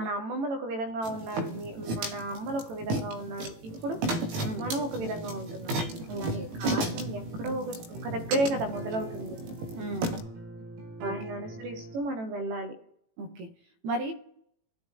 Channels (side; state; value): left; late; 18 ms